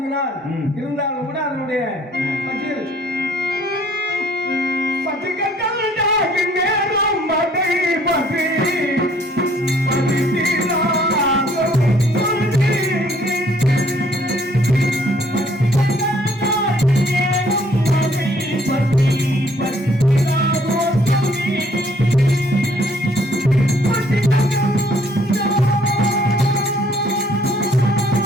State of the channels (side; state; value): both; normal; correlation 0.62